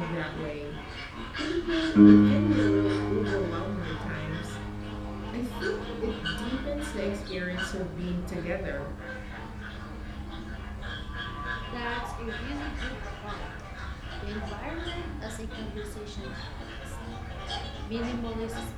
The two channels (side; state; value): both; identical; correlation 1.00